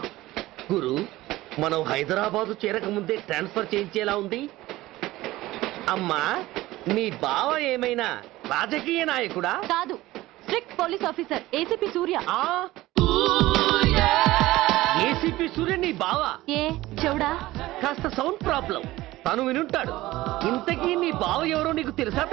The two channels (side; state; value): left; quieter; 17.5 dB